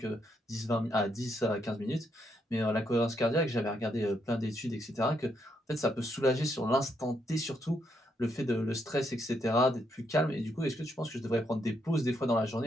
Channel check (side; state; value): both; normal; correlation 0.77